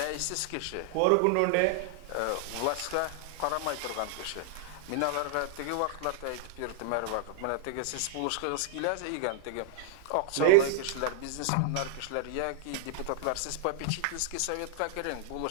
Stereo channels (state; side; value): different; both; correlation 0.00